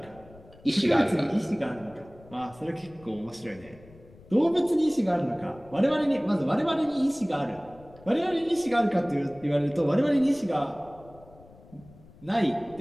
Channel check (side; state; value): left; noise; rumble, 23 dB below the sound